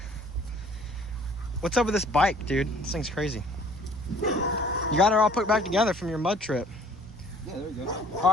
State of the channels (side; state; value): both; normal; correlation 0.54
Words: What's up with this bike, dude? This thing's crazy. You got it all put back together from your mud trip. Yeah, there we go. All